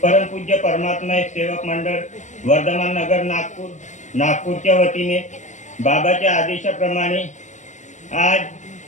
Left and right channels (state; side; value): late; right; 0.35 ms